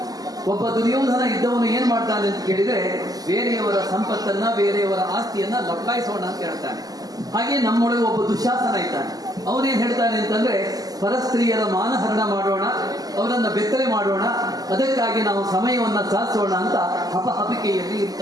ಒಬ್ಬ ದುರ್ಯೋಧನ ಇದ್ದವನು ಏನ್ ಮಾಡ್ತಾನೆ ಅಂತ ಕೇಳಿದ್ರೆ, ಬೇರೆಯವರ ಸಂಪತ್ತನ್ನ, ಬೇರೆಯವರ ಆಸ್ತಿಯನ್ನ ಲಪ್ಪಾಯಿಸೋಣ ಅಂತ ಹೇಳ್ತಾನೆ. ಹಾಗೆ ನಮ್ಮೊಳಗೆ ಒಬ್ಬ ದುಶ್ಯಾಸನ ಇದ್ದಾನೆ. ಅವನೇನ್ ಹೇಳ್ತಾನೆ ಅಂತಂದ್ರೆ, ಪರಸ್ತ್ರೀಯರ ಮಾನಹರಣ ಮಾಡೋಣ, ಅವರನ್ನ ಬೆತ್ತಲೆ ಮಾಡೋಣ, ಅದಕ್ಕಾಗಿ ನಾವು ಸಮಯವನ್ನ ಸಾಧಿಸೋಣ ಅಂತ ಹಪಹಪಿಕೆಯಲ್ಲಿ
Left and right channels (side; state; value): left; late; 0.18 ms